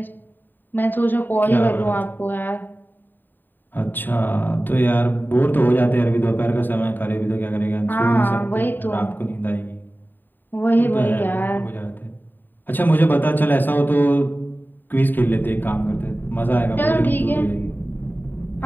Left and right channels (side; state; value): right; late; 0.091 ms